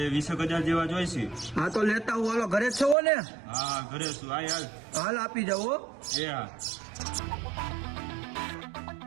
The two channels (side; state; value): left; drops out; at 3.0 s